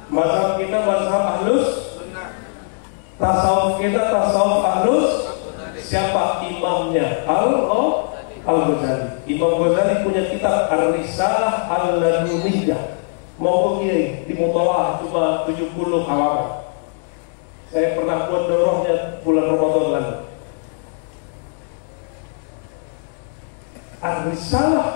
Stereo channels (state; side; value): silent; right; 65 dB below the other